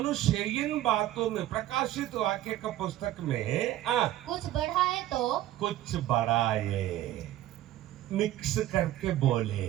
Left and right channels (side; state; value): left; quieter; 13.9 dB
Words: इन बातों में, प्रकाशित वाक्य का पुस्तक में कुछ बढ़ाए तो, कुछ बढ़ाए, मिक्स करके